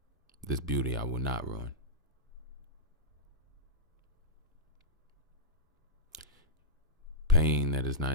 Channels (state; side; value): normal; both; correlation -0.13